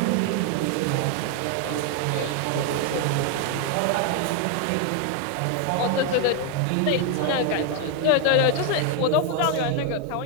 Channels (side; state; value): both; different; correlation 0.01